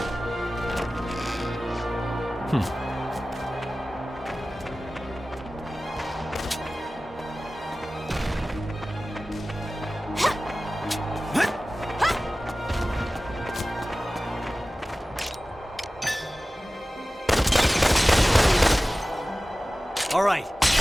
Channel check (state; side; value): normal; both; correlation 0.97